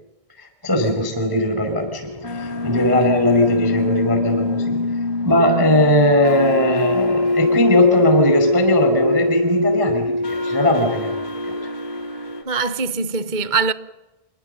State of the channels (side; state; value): left; late; 1.6 ms